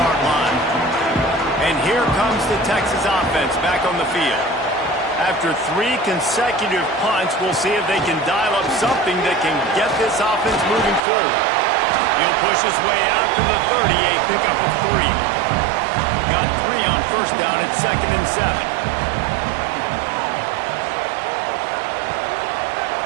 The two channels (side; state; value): left; drops out; at 11.0 s